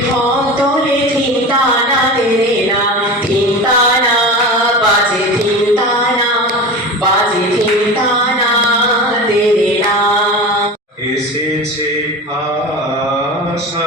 তোলে ধিনতানা দেরে না, ধিনতানা বাজে ধিনতানা বাজে ধিনতানা দেরে না। এসেছে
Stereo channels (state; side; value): normal; both; correlation 0.30